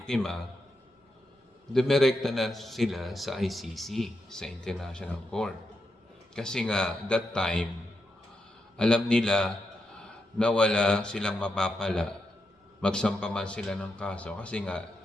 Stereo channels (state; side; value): normal; both; correlation 0.85